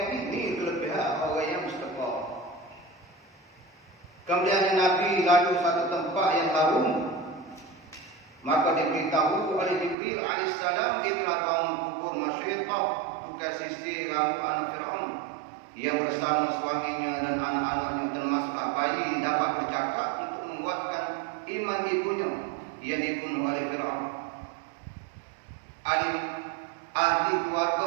ni kelebihan orang yang bersedekah. Kemudian Nabi lalu satu tempat yang harum, maka diberitahu oleh Jibril alaihissalam dia telah bangun kubur Masyidah, bukan sisi rambut anak Fir'aun yang bersama suaminya dan anak-anaknya termasuk bayi dapat bercakap untuk menguatkan iman ibunya yang dibunuh oleh Fir'aun. Ahli keluarga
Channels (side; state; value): left; drops out; at 10.0 s